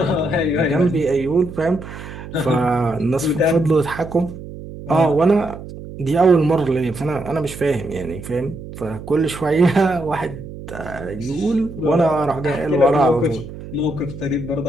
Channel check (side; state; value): right; noise; hum, 12 dB below the sound